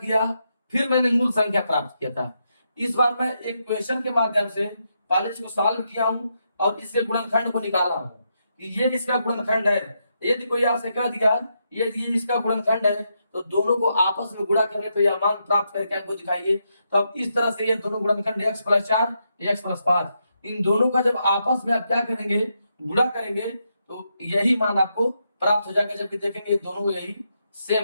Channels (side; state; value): both; inverted; correlation -0.81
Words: फिर मैंने मूल संख्या प्राप्त किया था। इस बार मैं एक क्वेश्चन के माध्यम से पहले इसको सॉल्व किया हूं और इसके गुणनखंड को निकाला हूं कि ये इसका गुणनखंड है। यदि कोई आपसे कह दिया ये इसका गुणनखंड है तो दोनों को आपस में गुणा करने पर यह मान प्राप्त करके हमको दिखाइए। तो अब इस तरह से ये दोनों गुणनखंड x प्लस 4 x प्लस 5, इन दोनों का जब आपस में आप क्या करेंगे, गुणा करेंगे तो यही मान आपको प्राप्त हो जाएगा। जब देखेंगे दोनों यही